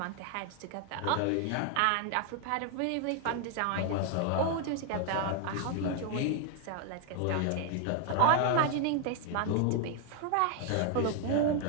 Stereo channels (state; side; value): different; both; correlation 0.00